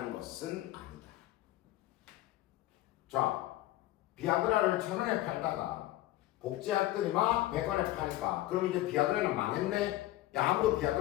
것은 아니다. 자 비아그라를 1,000원에 팔다가 복제약들이 막 100원에 파니까 그럼 이제 비아그라는 망했네? 야 아무도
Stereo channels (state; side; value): quieter; right; 15.9 dB